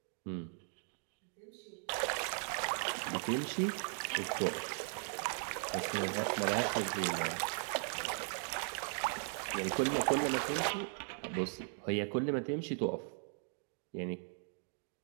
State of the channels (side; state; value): left; silent; 52 dB below the other